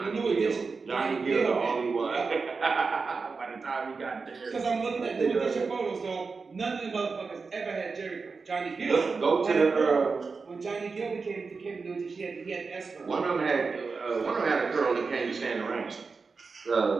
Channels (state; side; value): quieter; left; 4.6 dB